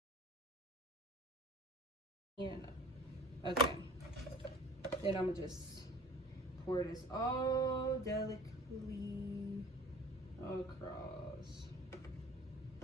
And okay, then I'm gonna just pour this all delicately across.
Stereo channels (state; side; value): normal; both; correlation 0.45